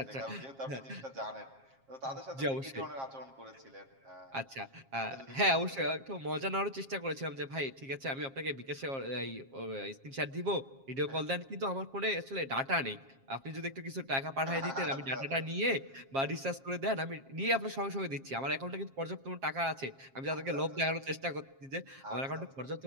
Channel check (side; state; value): left; late; 7.4 ms